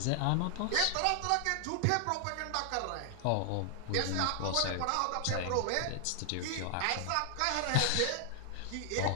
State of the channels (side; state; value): both; different; correlation 0.00